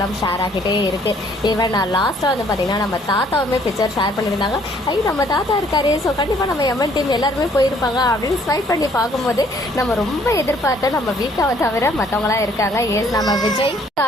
ஷேர் ஆகிட்டே இருக்குது. ஈவன் நான் லாஸ்ட்டாக வந்து பார்த்திங்கன்னா நம்ம தாத்தாவுமே பிக்சர் ஷேர் பண்ணியிருந்தாங்க. ஐயோ நம்ம தாத்தா இருக்காரு, ஸோ கண்டிப்பாக நம்ம எம்என் டீம் எல்லாருமே போயிருப்பாங்க அப்படின்னு ஸ்வைப் பண்ணி பார்க்கும்போது நம்ம ரொம்ப எதிர்பார்த்த நம்ம வீக்காவை தவிர மற்றவங்களாம் இருக்காங்க. ஏஸ் நம்ம விஜய்,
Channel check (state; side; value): normal; both; correlation 0.62